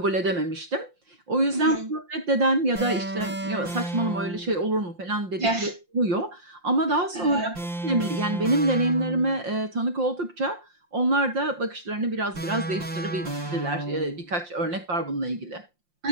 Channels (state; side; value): late; left; 5.7 ms